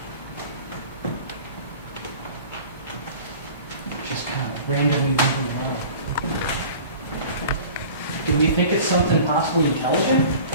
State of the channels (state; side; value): inverted; both; correlation -0.42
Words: Just kind of randomly moving around. Do we think it's something possibly intelligent?